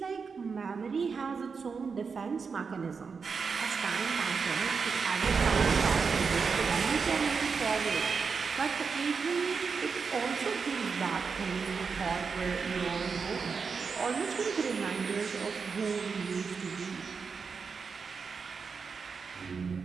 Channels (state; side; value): quieter; left; 5.4 dB